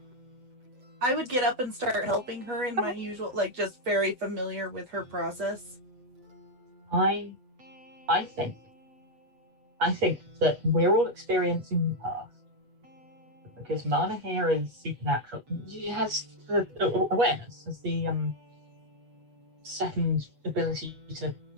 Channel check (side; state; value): left; late; 8.1 ms